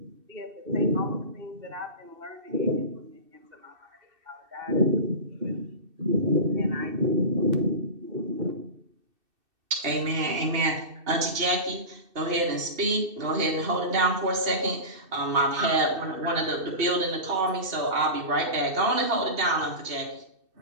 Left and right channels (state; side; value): late; left; 2.6 ms